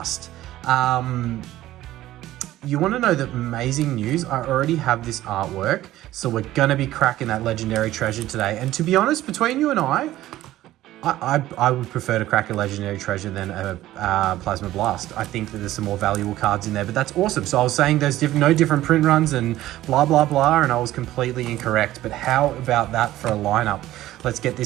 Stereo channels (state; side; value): quieter; left; 14.9 dB